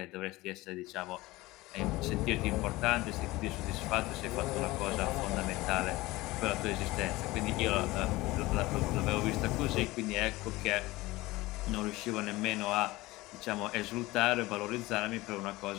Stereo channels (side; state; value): right; quieter; 19.8 dB